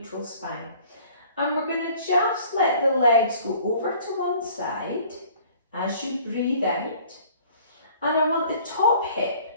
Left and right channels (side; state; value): both; inverted; correlation -0.53